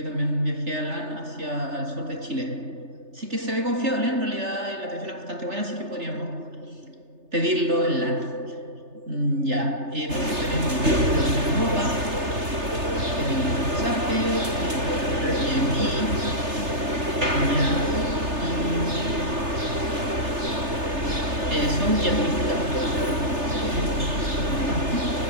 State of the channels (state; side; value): late; left; 3.3 ms